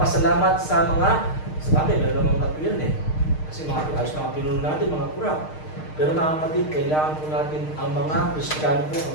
sa mga, sa bagay, meron namang katuyan eh. Kasi mga ayos na mga pinuno natin, mga kurap. Pero mga kapatid, kailangan po natin ang mga Kristiyano po,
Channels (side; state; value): right; late; 6.5 ms